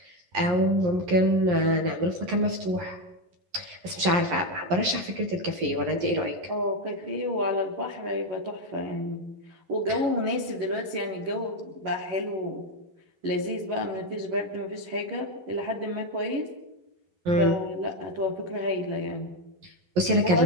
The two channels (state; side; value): late; left; 11 ms